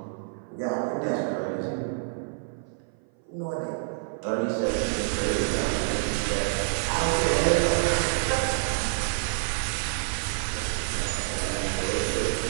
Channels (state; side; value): silent; left; 56 dB below the other